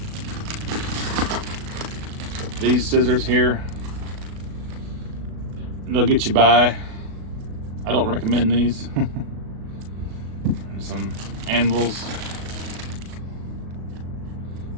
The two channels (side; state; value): left; late; 37 ms